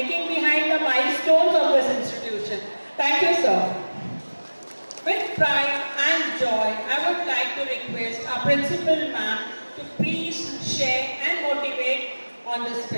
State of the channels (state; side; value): inverted; both; correlation -1.00